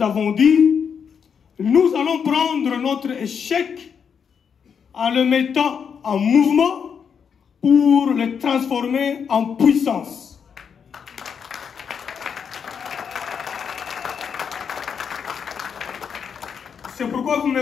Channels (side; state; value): right; quieter; 6.9 dB